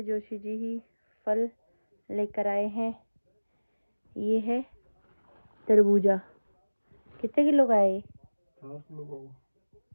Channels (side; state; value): both; inverted; correlation -1.00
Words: जोशी जी ही फल लेकर आए हैं। ये है तरबूजा। कितने किलो का है ये? 4 किलो का।